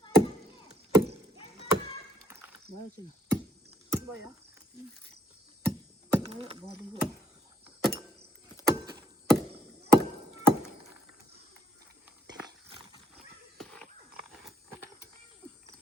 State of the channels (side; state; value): both; normal; correlation 0.68